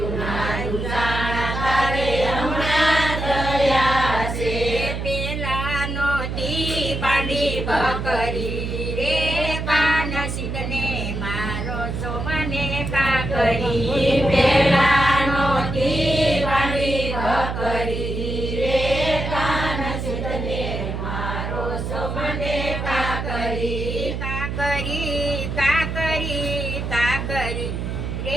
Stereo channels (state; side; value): noise; right; hum, 4 dB below the sound